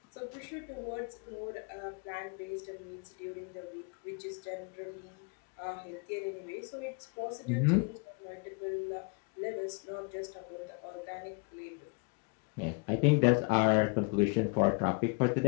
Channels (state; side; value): quieter; right; 34.3 dB